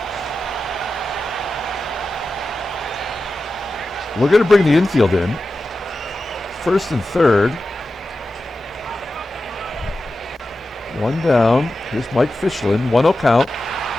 We're going to bring the infield in. First and third. 1 down. Here's Mike FISCHLIN. 1-0 count.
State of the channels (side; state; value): both; normal; correlation 0.92